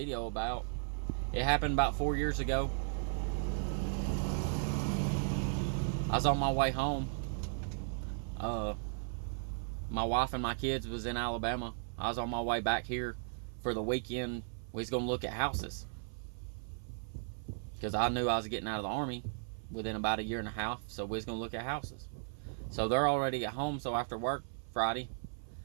about. It happened about 4 years ago. I was on my way home. My wife and my kids was in Alabama. I was on my way back here for the weekend. We was going to look at houses, because I knew I was getting out of the Army within about a year and a half, so we was going to look at houses. So they're already at home, so after work Friday,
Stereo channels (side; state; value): left; silent; 54 dB below the other